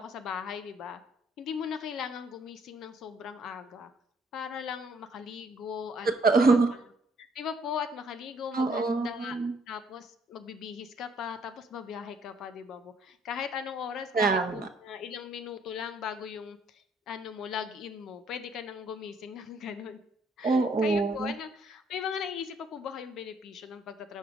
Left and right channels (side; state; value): both; normal; correlation 0.65